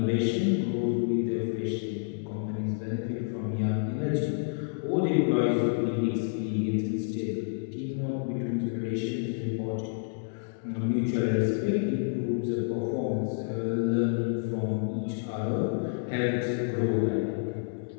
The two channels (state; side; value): silent; right; digital silence